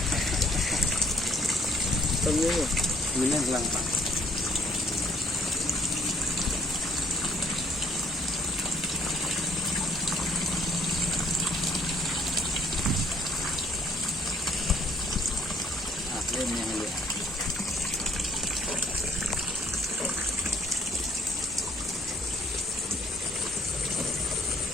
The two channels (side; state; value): both; normal; correlation 0.62